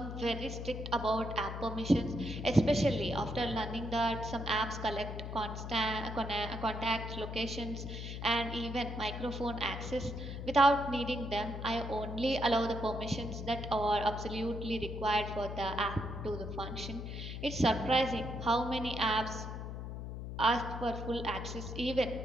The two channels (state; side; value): noise; left; hum, 7 dB below the sound